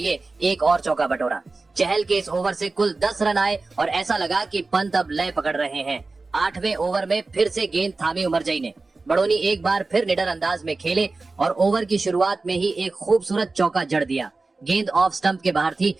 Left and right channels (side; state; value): left; quieter; 3.6 dB